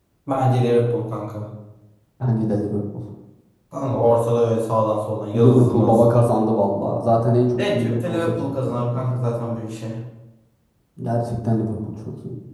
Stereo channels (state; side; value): identical; both; correlation 1.00